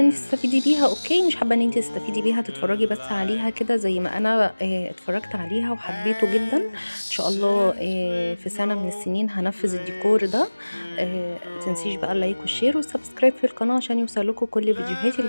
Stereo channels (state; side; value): inverted; both; correlation -1.00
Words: ان انتي تستفيدي بيها اوكي، مش حابة ان انتي تستفيدي بيها تتفرجي بس عليها كده زي ما انا اتفرجت عليها وحبيته جدا. ان شاء الله في سنة من السنين هنفذ الديكور ده. متنسيش بقى اللايك والشير والسبسكرايب في القناة عشان يوصلكوا كل فيديوهاتي